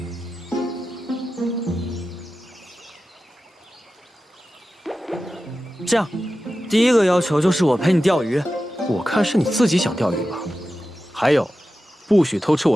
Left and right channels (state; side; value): normal; both; correlation 0.93